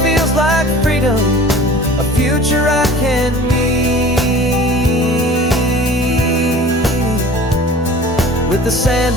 feels like freedom, a future I can need, with the sand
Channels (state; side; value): normal; both; correlation 0.43